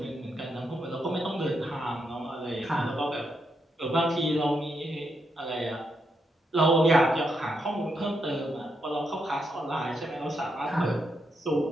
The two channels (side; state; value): both; normal; correlation 0.81